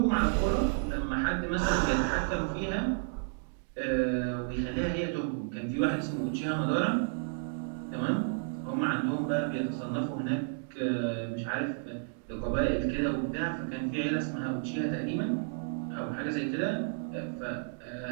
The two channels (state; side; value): silent; left; digital silence